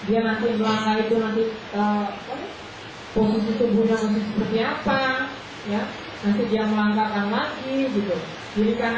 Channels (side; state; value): both; identical; correlation 1.00